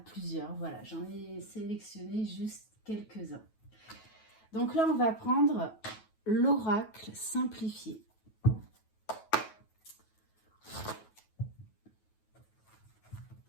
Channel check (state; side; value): late; right; 9.3 ms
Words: Voilà, j'en ai sélectionné juste quelques-uns. Donc là, on va prendre l'oracle simplifié.